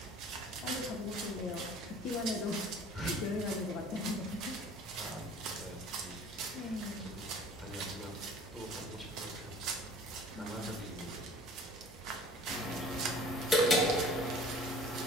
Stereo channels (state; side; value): normal; both; correlation 0.48